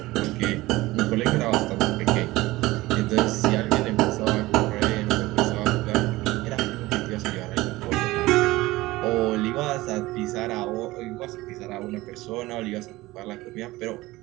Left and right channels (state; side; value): quieter; left; 19.1 dB